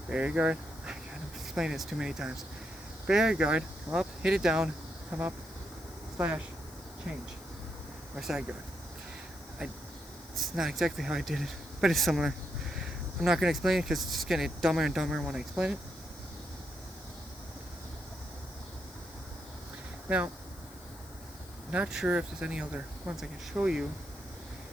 barrier guard. I've explained this too many times. Barrier guard, come up, hit it down, come up, slash, change, or side guard. It's not exactly how I did it, but it's similar. I'm not going to explain it because it's just getting dumber and dumber when I explain it. Now, not sure if there's any other ones I can show you.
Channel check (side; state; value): left; noise; hiss, 20 dB below the sound